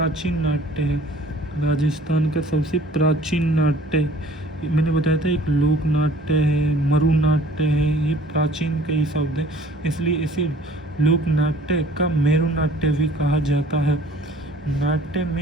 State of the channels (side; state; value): both; normal; correlation 0.51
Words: नाट्य है। राजस्थान का सबसे प्राचीन नाट्य, मैंने बताया था एक लोक नाट्य है, मरु नाट्य है, ये प्राचीन कई शब्द हैं, इसलिए इसे लोक नाट्य का मेरु नाट्य भी कहा जाता है। नाट्य